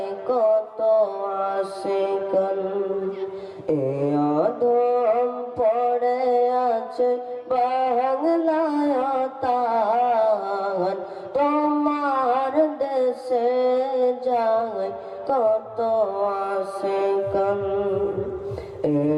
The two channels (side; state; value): both; identical; correlation 1.00